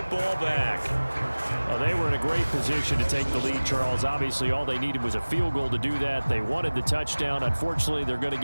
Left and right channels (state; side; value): inverted; both; correlation -1.00